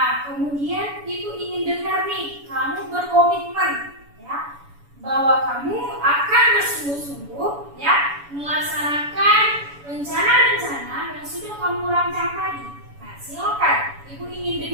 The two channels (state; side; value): late; left; 7.0 ms